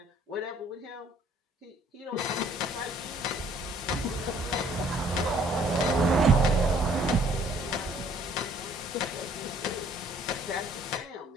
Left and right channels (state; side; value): normal; both; correlation 0.60